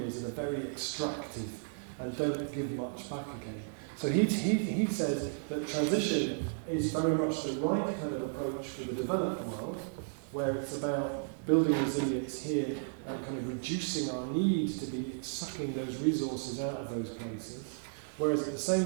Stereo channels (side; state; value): left; silent; 55 dB below the other